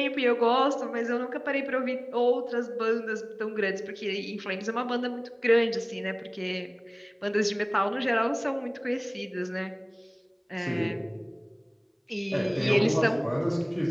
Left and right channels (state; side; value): identical; both; correlation 1.00